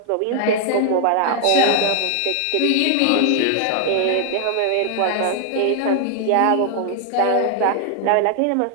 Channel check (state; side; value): different; both; correlation 0.00